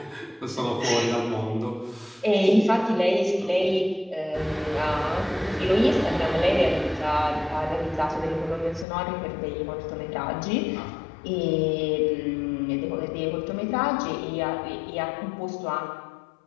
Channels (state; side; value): drops out; right; at 8.8 s